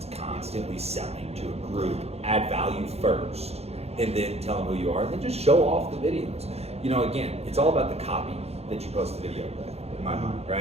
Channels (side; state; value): left; late; 0.30 ms